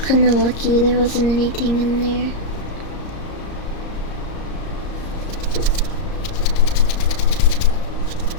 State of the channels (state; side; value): late; right; 34 ms